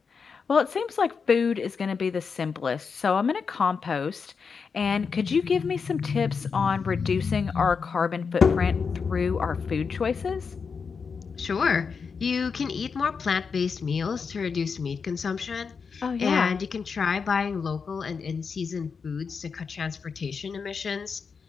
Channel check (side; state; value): right; quieter; 5.6 dB